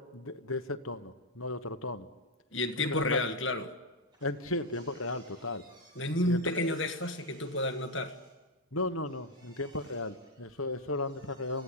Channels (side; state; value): both; normal; correlation 0.03